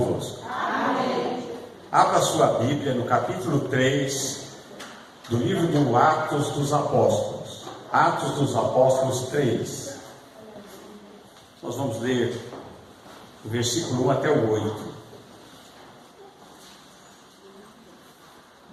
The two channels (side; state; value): both; identical; correlation 1.00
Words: Abra sua Bíblia no capítulo 3 do livro do Atos dos Apóstolos. Atos dos Apóstolos 3. Nós vamos ler o versículo 1 até o 8.